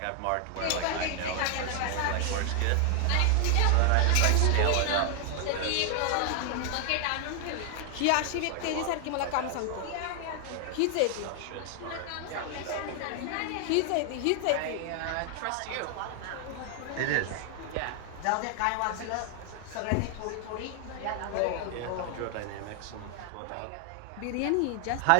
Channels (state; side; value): different; both; correlation 0.00